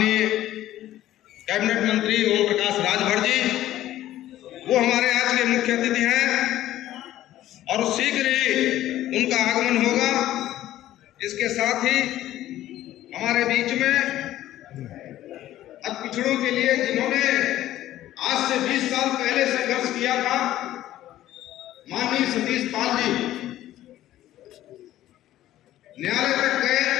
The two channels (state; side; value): quieter; right; 13.7 dB